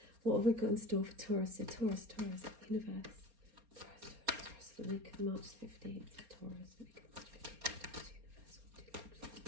what have we got in store for Taurus? So Taurus, universe, Taurus, for the week of March 15th, Taurus, week of March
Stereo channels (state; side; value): late; left; 4.3 ms